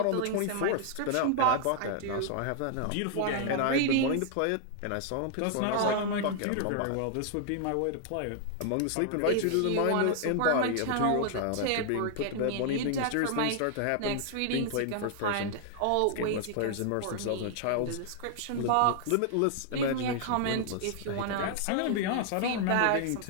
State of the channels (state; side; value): different; both; correlation 0.00